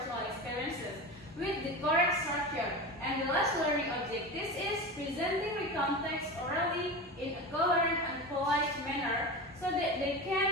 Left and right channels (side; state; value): both; normal; correlation 0.26